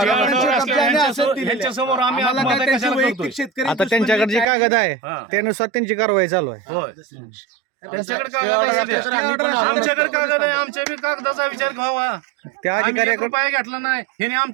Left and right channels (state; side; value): drops out; left; at 4.5 s